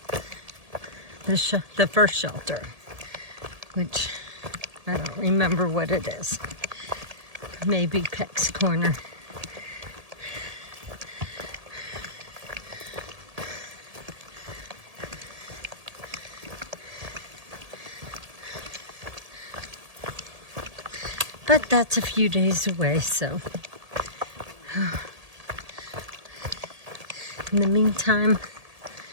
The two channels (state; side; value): late; left; 1.8 ms